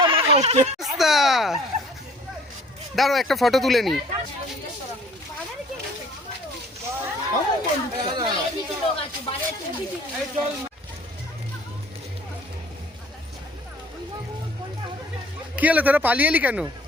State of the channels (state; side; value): normal; both; correlation 0.53